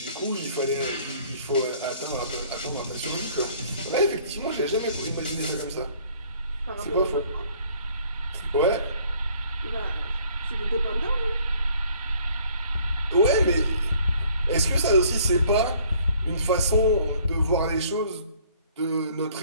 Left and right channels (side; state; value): both; inverted; correlation -0.58